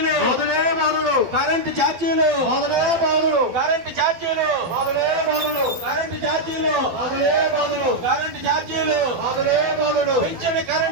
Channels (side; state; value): left; late; 12 ms